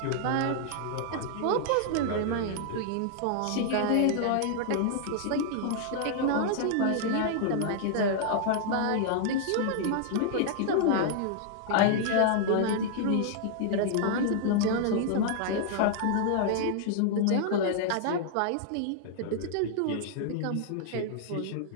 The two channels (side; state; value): both; different; correlation -0.01